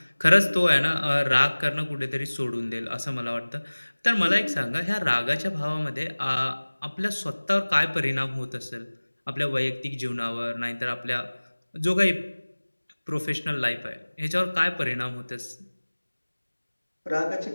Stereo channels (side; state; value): both; inverted; correlation -1.00